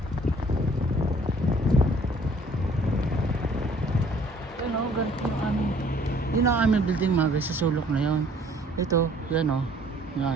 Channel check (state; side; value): normal; both; correlation 0.57